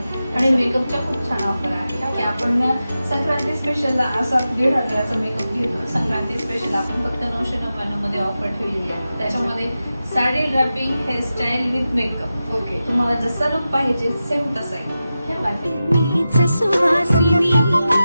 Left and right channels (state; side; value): inverted; both; correlation -0.92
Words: आणि मेकअपच्या खूप छान ऑफर आहेत की आपण संक्रांती स्पेशलला असा 1,500चा मेकअप घेतो. संक्रांती स्पेशल आपण फक्त 999 मध्ये ऑफर ठेवलेली आहे. त्याच्यामध्ये sari draping, hairstyle with makeup. Okay. तुम्हाला जसा लुक पाहिजे सेम तसा आहे. मीच सुवासिनी